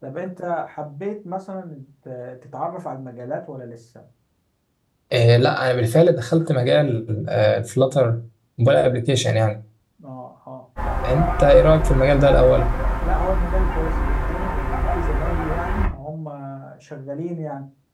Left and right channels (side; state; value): both; identical; correlation 1.00